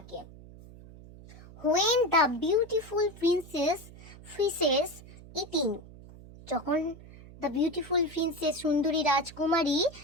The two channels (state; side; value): noise; right; hum, 19 dB below the sound